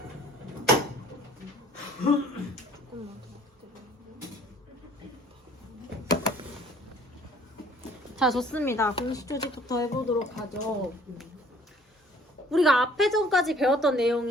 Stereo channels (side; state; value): both; normal; correlation 0.55